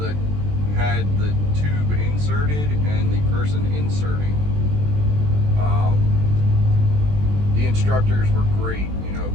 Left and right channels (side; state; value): left; late; 20 ms